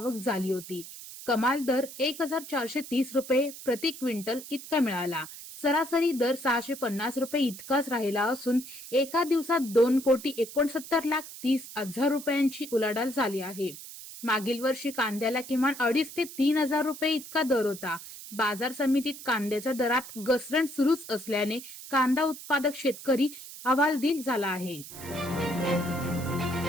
झाली होती। कमाल दर 1430 रुपये प्रति क्विंटल इतका मिळाला। सरासरी दर 650 रुपये इतकाच राहिला असून एका दिवसात 2,69,30,00,000 रुपयांची उलाढाल झाली आहे। मागील वर्षी कांद्याला किमान 2,500 ते 3,000 रुपये इतका दर होता। बाजार समितीत कांद्याच्या दरात घसरण सुरूच असल्याने कांदा उत्पादक शेतकरी हवालदिल झाला आहे।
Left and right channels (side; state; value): right; noise; hiss, 13 dB below the sound